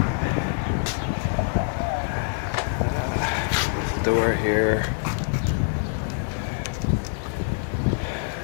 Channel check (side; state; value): right; silent; digital silence